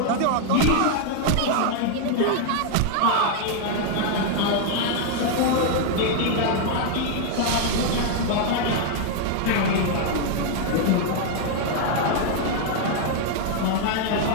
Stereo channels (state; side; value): different; both; correlation 0.00